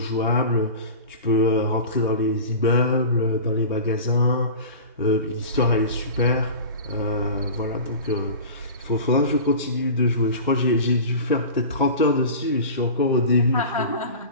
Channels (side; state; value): both; inverted; correlation -0.34